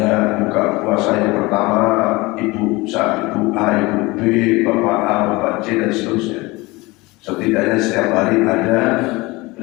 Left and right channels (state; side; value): quieter; right; 22.6 dB